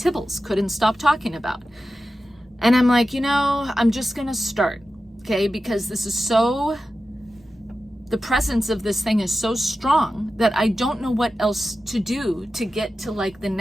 couldn't stop talking about. And I'm like, I'm just gonna start, okay? Because this is the presence of this thing is so strong that I don't know what else to do to get to like the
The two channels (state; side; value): normal; both; correlation 0.93